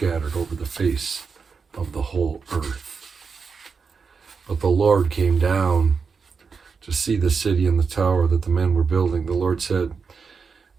over the face of the whole earth." But the Lord came down to see the city and the tower that the men were building. The Lord said,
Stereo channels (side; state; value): left; quieter; 5.4 dB